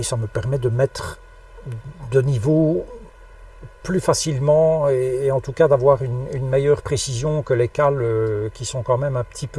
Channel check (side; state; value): both; identical; correlation 1.00